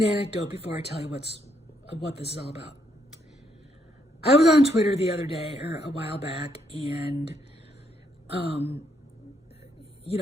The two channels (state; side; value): normal; both; correlation 0.74